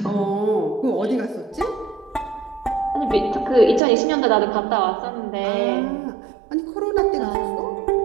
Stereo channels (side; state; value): left; drops out; at 3.8 s